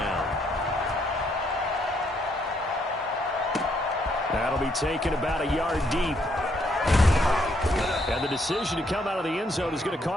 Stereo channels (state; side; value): normal; both; correlation 0.72